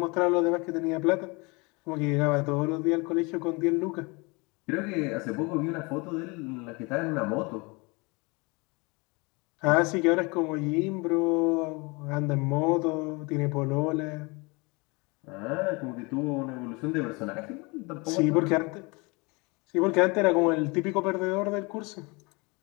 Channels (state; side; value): quieter; right; 27.7 dB